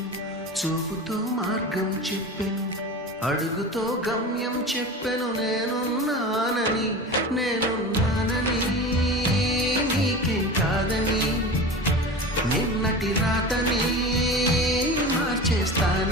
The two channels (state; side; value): normal; both; correlation 0.31